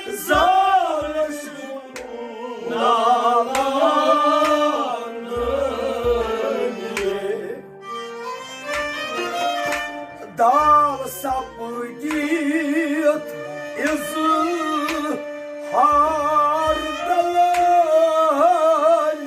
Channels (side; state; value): both; identical; correlation 1.00